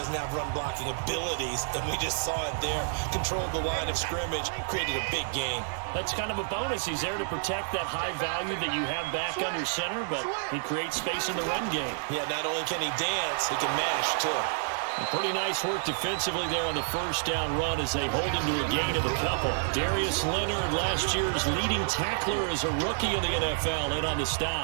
have run-blocking abilities, and we just saw it there. Controlled the line of scrimmage, created a big gain. That's kind of a bonus. He's there to protect that high value that you have back under center, but he creates space in the run game. Yeah, not only can he dance, he can mash, too. Pretty nice work defensively there on the first down run as they hold him to a gain of a couple. Darius Leonard, last year's leading tackler as a rookie in the NFL, in on the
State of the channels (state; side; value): silent; left; digital silence